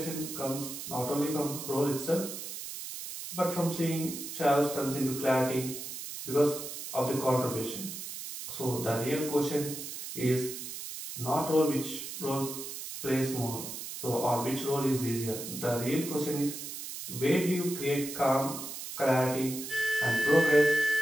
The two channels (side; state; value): right; noise; hiss, 8 dB below the sound